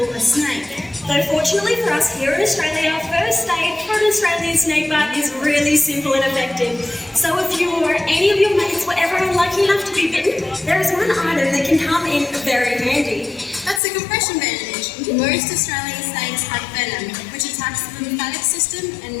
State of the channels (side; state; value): right; drops out; at 13.8 s